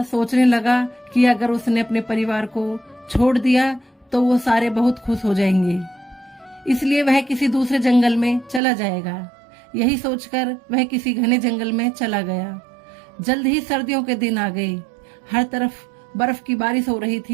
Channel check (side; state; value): left; drops out; at 8.6 s